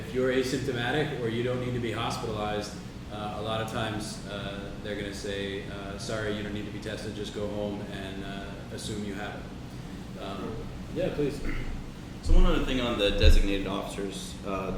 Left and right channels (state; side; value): identical; both; correlation 1.00